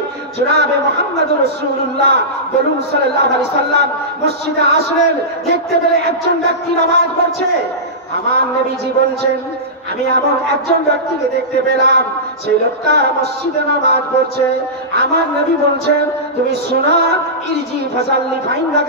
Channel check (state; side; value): normal; both; correlation -0.17